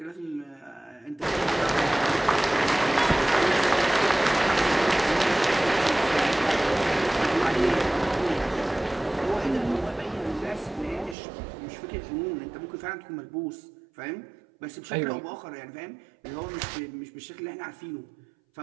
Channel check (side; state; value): left; drops out; at 11.2 s